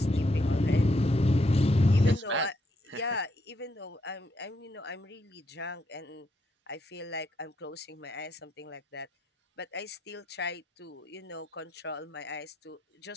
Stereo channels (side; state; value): both; normal; correlation 0.77